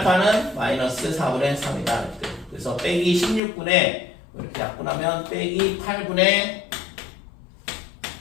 마이너스 4분의 3이다 이렇게. 그래서 빼기 16분의 이렇게 약분하면 빼기 8분의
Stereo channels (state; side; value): drops out; right; at 3.4 s